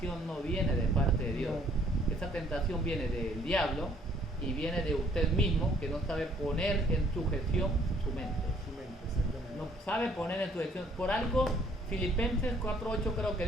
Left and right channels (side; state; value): both; normal; correlation 0.62